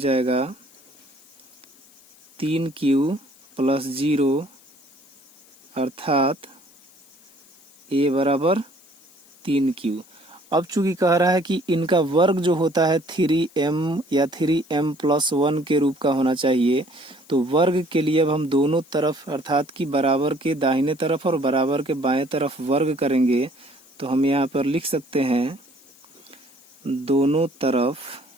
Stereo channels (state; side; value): noise; left; hiss, 27 dB below the sound